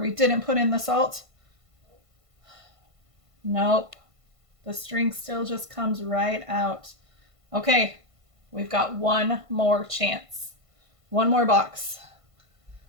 didn't put in the salt. Nope. The string still just comes right out. Okay, we've got one more chance. One more box.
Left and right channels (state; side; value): late; left; 1.5 ms